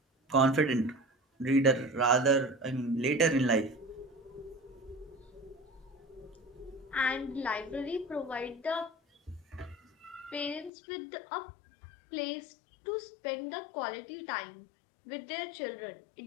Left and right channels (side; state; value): right; drops out; at 10.7 s